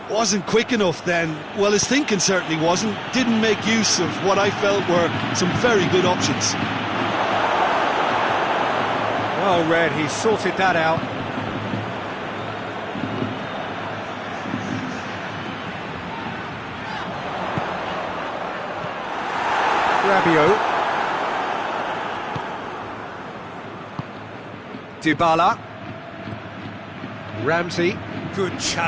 wasn't quick enough then. Well, his thinking certainly wasn't. Didn't make use of what I felt were some very good options. Well read, he sorted that out. Rabiot. Dybala. Ramsey. Good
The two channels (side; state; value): both; identical; correlation 1.00